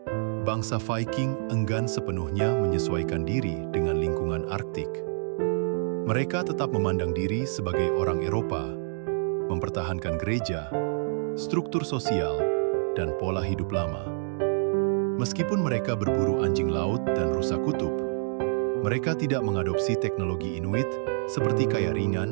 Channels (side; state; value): left; silent; digital silence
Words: bangsa Viking enggan sepenuhnya menyesuaikan diri dengan lingkungan Arktik. Mereka tetap memandang diri sebagai orang Eropa, mempertahankan gereja, struktur sosial, dan pola hidup lama. Meskipun mereka berburu anjing laut dan rusa kutub, mereka tidak mengadopsi teknologi Inuit seperti kaya